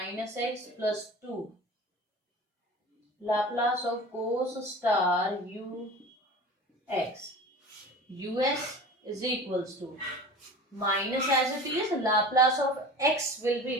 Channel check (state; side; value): normal; both; correlation 0.37